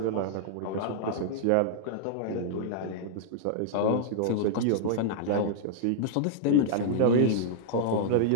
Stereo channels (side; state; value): both; different; correlation -0.01